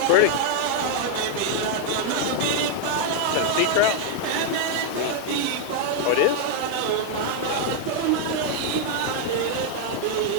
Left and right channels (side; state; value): both; different; correlation 0.00